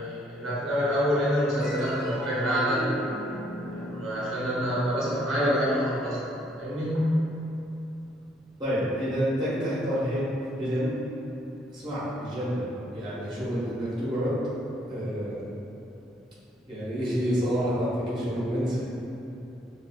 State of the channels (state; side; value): normal; both; correlation 0.67